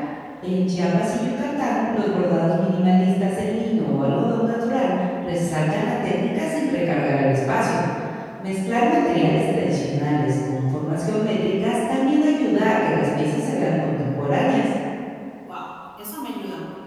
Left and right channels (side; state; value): both; identical; correlation 1.00